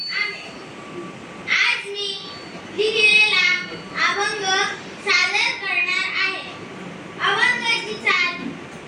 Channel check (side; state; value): both; identical; correlation 1.00